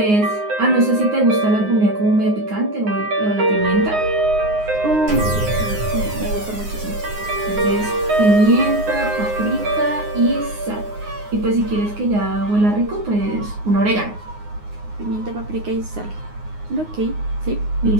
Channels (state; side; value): late; left; 9.6 ms